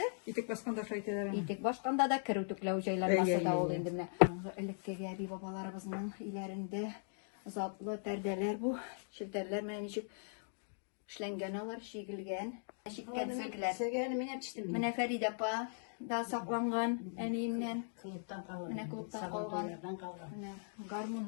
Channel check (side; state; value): right; silent; digital silence